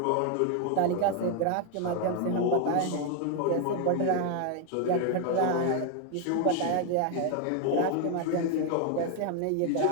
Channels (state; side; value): different; both; correlation 0.01